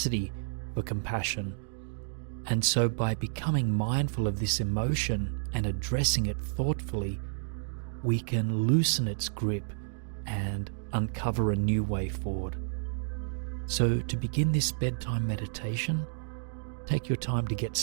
for compassion. And so by becoming mindful of this emotion and addressing it thoughtfully, we can loosen its grip and uncover a new way forward. So to begin this bedtime meditation, take your time to get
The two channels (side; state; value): left; silent; digital silence